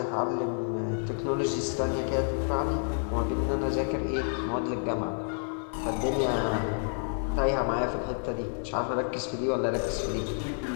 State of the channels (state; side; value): silent; right; 58 dB below the other